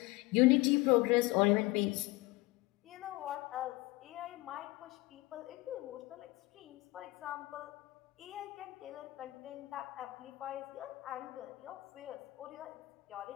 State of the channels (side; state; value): right; quieter; 21.1 dB